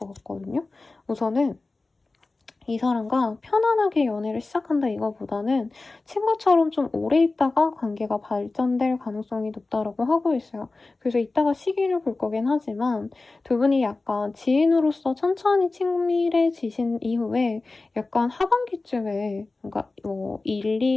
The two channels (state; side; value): quieter; right; 3.4 dB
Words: 같거든요. 우선은 이 사람과 편안하게 연애를 시작한다 이거보다는 친구처럼 좀 오래 있다가 관계가 발전될 가능성이 높다라고 하고 있어요. 그래서 이따가 시기를 볼 거긴 하지만 두 분이 약간 지인으로서 천천히 친밀해지신 이후에 약간 하반기쯤에 그러니까 1,